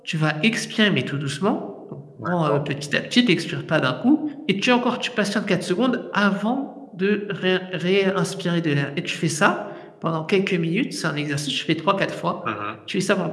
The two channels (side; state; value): both; identical; correlation 1.00